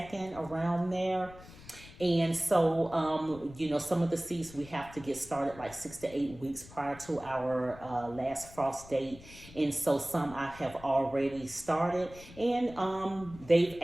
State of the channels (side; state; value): left; noise; rumble, 19 dB below the sound